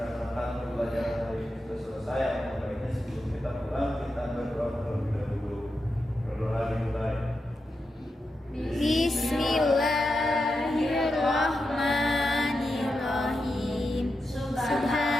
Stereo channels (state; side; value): normal; both; correlation 0.88